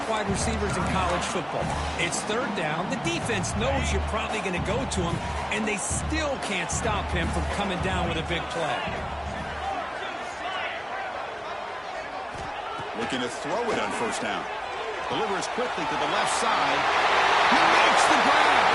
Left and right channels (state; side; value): identical; both; correlation 1.00